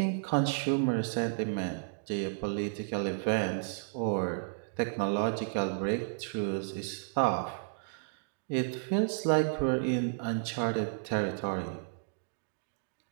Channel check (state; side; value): silent; left; digital silence